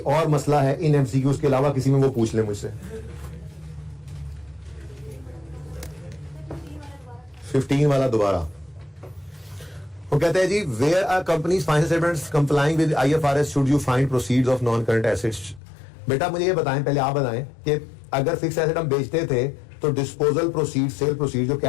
और मसला है इन एमसीक्यूज के अलावा किसी में, वो पूछ ले मुझसे। 15 वाला दोबारा वो कहते हैं जी where are companies financial statements complying with IFRS should you find proceeds of non current assets. बेटा मुझे ये बताएं, पहले आप बताएं कि अगर फिक्स एसेट हम बेचते थे तो डिस्पोजल प्रोसीड, सेल प्रोसीड, जो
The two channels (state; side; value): drops out; right; at 15.6 s